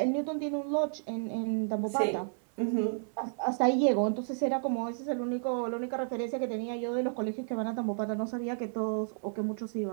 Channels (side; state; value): left; silent; 57 dB below the other